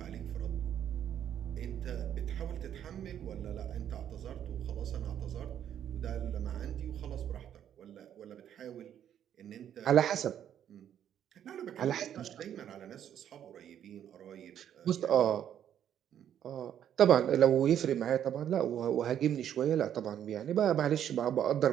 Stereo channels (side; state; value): left; quieter; 9.9 dB